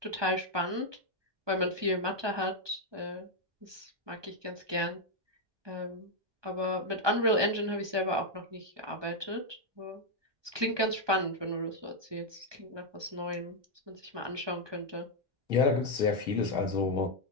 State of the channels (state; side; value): late; left; 1.2 ms